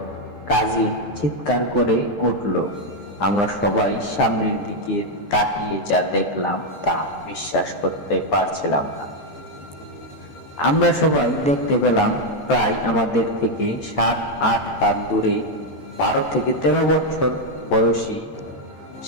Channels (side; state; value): right; late; 14 ms